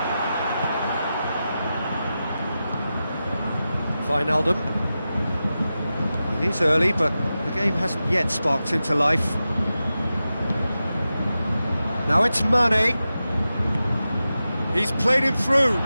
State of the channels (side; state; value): both; inverted; correlation -0.92